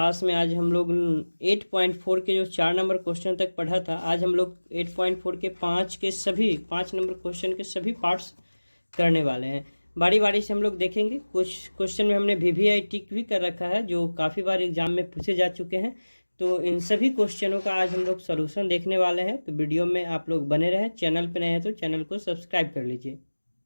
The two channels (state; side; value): inverted; both; correlation -1.00